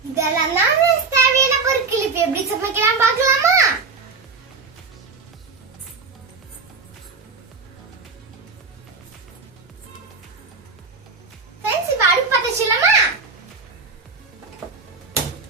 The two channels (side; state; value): left; quieter; 4.4 dB